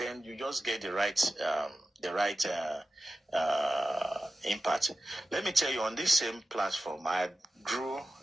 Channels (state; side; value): normal; both; correlation 0.93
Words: you just get the right impact. Let me tell you, on this same platform, I grew